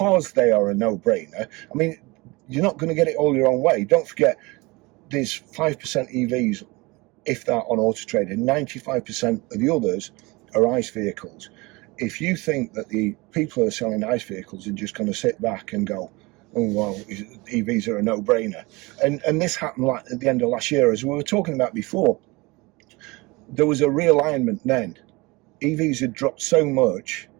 they are a no-brainer, I mean, you're not going to get it all your own way. Don't forget, there's 5% EVs, if that, on autotrader. 95% of the others are ICE vehicles. If you think that the people who are selling ICE vehicles are just going to sit back and go, oh, well, EVs are a no-brainer. And this happened at the end of last year, as we were talking about before. There was a realignment then. EVs had dropped so much.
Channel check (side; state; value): left; quieter; 24.1 dB